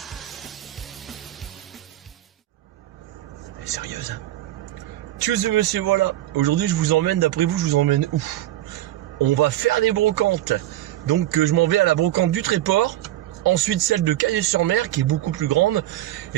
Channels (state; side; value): quieter; left; 14.2 dB